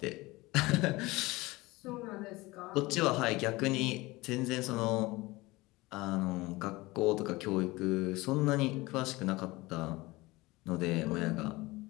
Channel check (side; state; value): right; quieter; 21.2 dB